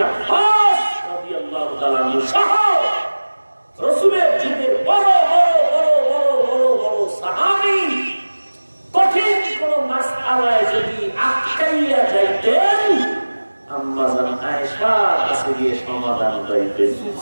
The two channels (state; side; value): inverted; both; correlation -1.00